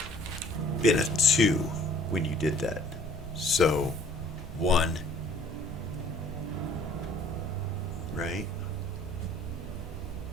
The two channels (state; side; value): normal; both; correlation 0.56